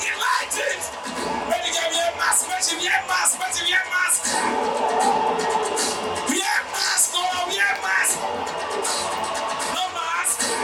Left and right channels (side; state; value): both; identical; correlation 1.00